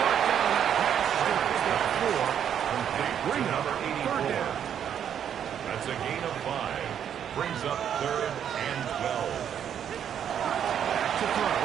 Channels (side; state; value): left; quieter; 9.0 dB